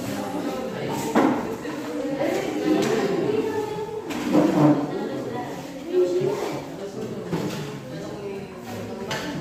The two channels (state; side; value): identical; both; correlation 1.00